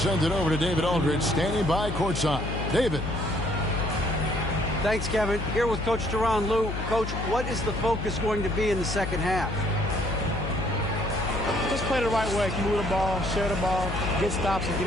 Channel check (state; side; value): noise; left; hum, 5 dB below the sound